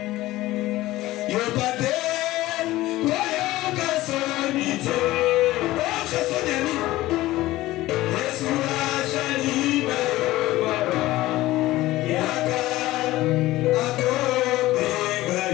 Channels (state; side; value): quieter; right; 17.1 dB